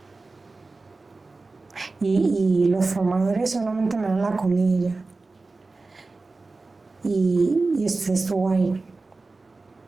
y los formadores solamente me dan la comida. Y usted estuvo ahí,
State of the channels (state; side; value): quieter; left; 3.6 dB